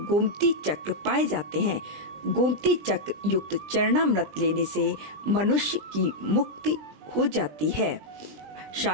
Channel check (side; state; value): left; late; 20 ms